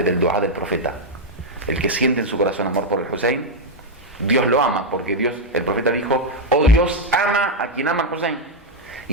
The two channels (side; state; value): both; normal; correlation 0.01